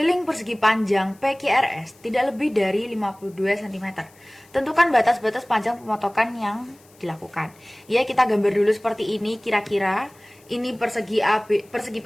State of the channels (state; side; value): noise; left; hiss, 29 dB below the sound